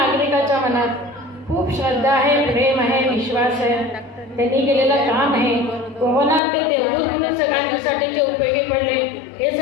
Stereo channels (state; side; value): drops out; right; at 6.4 s